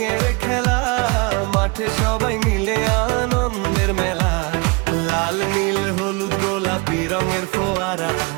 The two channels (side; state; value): left; quieter; 28.7 dB